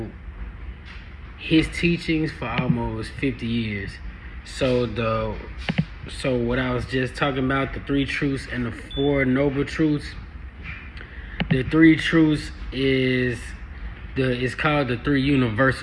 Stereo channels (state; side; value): identical; both; correlation 1.00